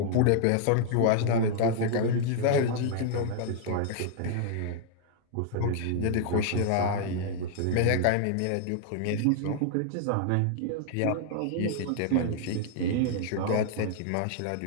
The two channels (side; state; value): both; different; correlation -0.01